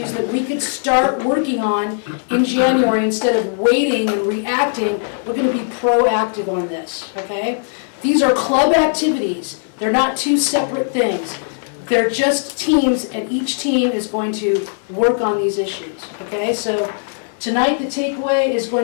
that we could start working on in January instead of waiting and reacting. We're going to be proactive on this, okay? These are club activities. They're not two separate things. They're just teams, and each team is going to work on these issues, okay? So tonight, the takeaway is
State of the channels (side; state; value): right; silent; 56 dB below the other